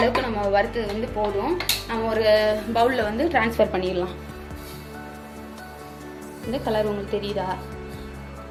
நம்ம வறுத்தது போதும். நம்ம ஒரு பவுலில் ட்ரான்ஸ்ஃபர் பண்ணிடலாம். இந்த கலர் உங்களுக்கு தெரியுதா?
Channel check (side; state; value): both; identical; correlation 1.00